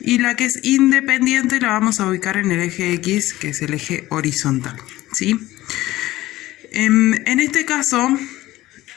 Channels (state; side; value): quieter; right; 16.5 dB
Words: la que es independiente la vamos a ubicar en el eje X, que es el eje horizontal, ¿sí? En este caso,